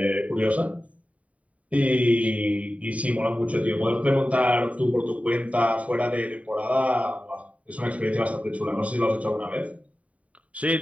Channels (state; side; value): late; left; 0.067 ms